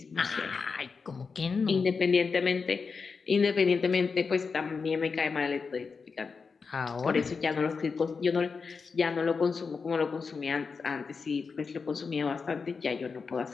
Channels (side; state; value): right; quieter; 5.0 dB